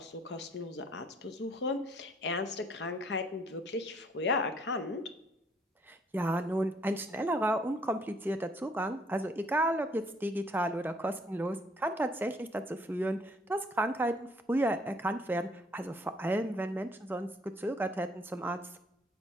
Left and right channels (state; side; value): normal; both; correlation 0.64